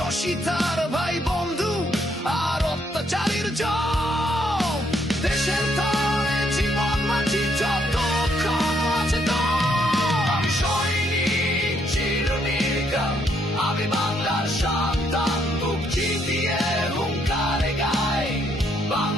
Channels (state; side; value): normal; both; correlation 0.72